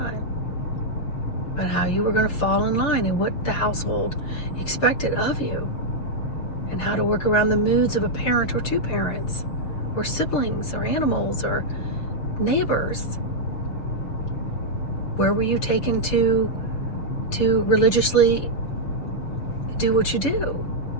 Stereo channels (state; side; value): late; right; 6.7 ms